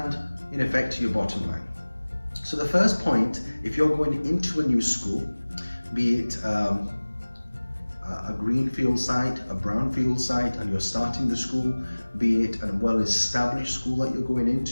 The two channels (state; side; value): inverted; both; correlation -1.00